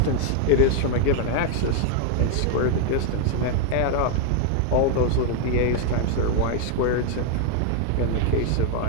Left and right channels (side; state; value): both; different; correlation 0.00